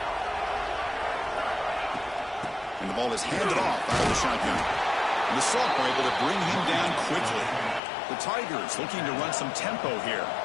the ball is handed off out of the shotgun. And the Salt are able to bring him down quickly. The Tigers looking to run some tempo here.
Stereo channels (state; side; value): drops out; right; at 7.8 s